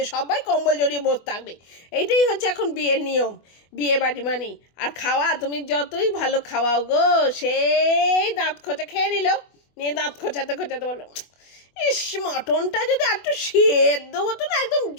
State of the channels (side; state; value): right; late; 24 ms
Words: সবাই কম্বল জড়িয়ে বসে থাকবে। এইটাই হচ্ছে এখন বিয়ের নিয়ম। বিয়ে বাড়ি মানে আর খাওয়া, তুমি যতই ভালো খাওয়াও গো, সেই দাঁত খোঁচা খেয়ে নিয়ে দাঁত খোঁচাতে বলো, ইস মটনটা যদি একটু সেদ্ধ হতো না, একদম